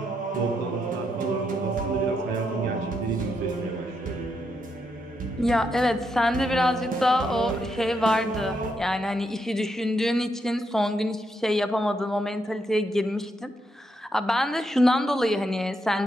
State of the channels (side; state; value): both; normal; correlation 0.80